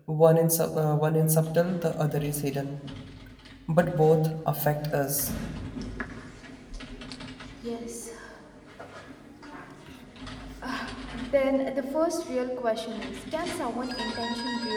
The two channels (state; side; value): identical; both; correlation 1.00